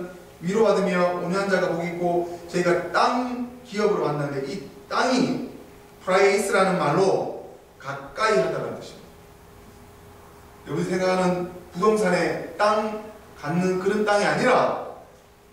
위로받으며 온유한 자가 복이 있고, 저희가 땅 기업으로 만났는데 이 땅이 프라이스라는 말로 가까이 하다라는 뜻입니다. 여러분이 생각하는 부동산에 땅 갖는 그런 땅이 아니라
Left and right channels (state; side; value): identical; both; correlation 1.00